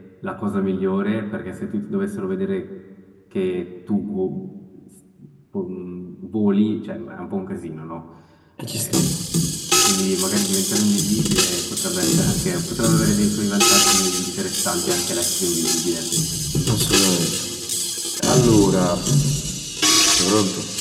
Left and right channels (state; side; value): identical; both; correlation 1.00